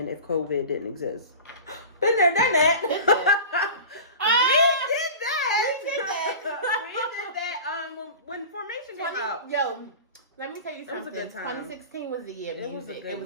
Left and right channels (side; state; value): both; inverted; correlation -0.35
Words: if COVID didn't exist? Been there, done that. Let me tell you It was a something. good time. 2016 was the year of It was a music. good It